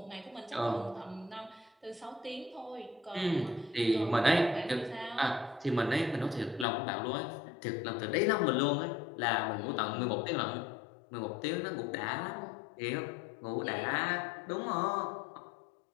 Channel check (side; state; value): right; drops out; at 6.7 s